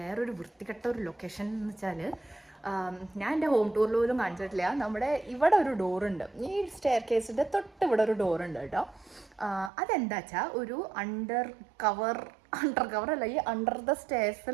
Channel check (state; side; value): drops out; left; at 9.7 s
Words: വൃത്തികെട്ട ഒരു ലൊക്കേഷൻ എന്ന് വെച്ചാല്, ഞാൻ എൻ്റെ ഹോം ടൂറിൽ പോലും കാണിച്ചിട്ടില്ല. നമ്മുടെ ഇവിടെ ഒരു ഡോറുണ്ട്, ഈ സ്റ്റെയർ കേസിൻ്റെ തൊട്ട് ഇവിടെ ഒരു ഡോറുണ്ട് കേട്ടോ. അതെന്താ വെച്ചാൽ ഒരു അണ്ടർ കവർ അല്ല, ഈ അണ്ടർ ദ